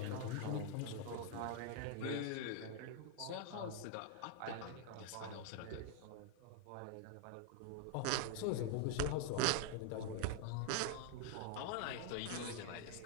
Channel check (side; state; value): both; different; correlation 0.00